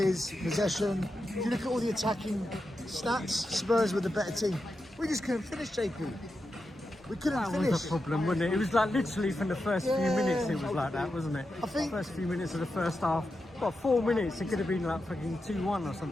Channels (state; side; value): normal; both; correlation 0.88